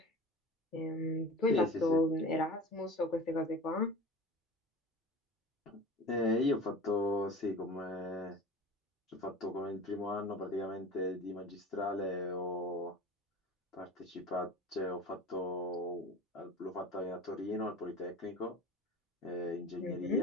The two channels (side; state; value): both; normal; correlation 0.36